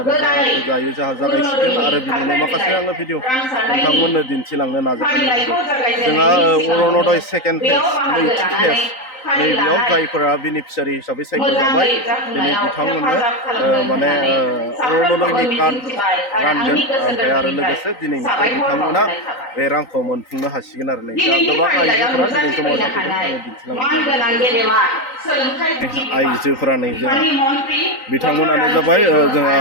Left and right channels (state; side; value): late; right; 3.9 ms